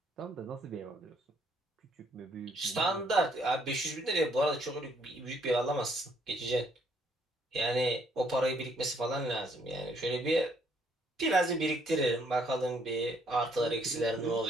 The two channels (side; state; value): both; normal; correlation 0.67